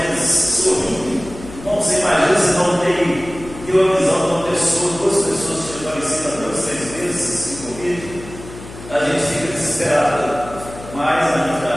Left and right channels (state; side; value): noise; left; hum, 15 dB below the sound